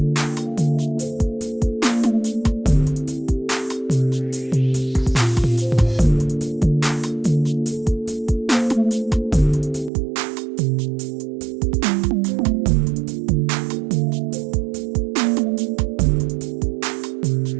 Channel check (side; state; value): left; drops out; at 9.9 s